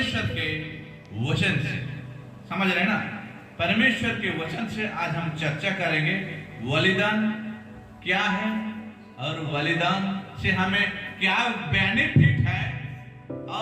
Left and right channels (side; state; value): both; identical; correlation 1.00